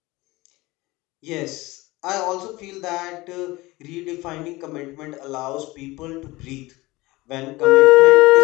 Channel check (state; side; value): quieter; right; 20.9 dB